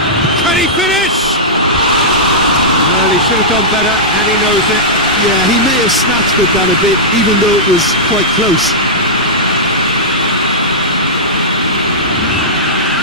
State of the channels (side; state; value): both; normal; correlation -0.12